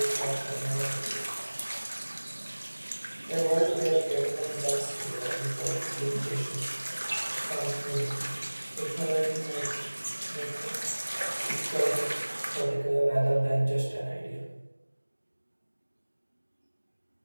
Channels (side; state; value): both; inverted; correlation -1.00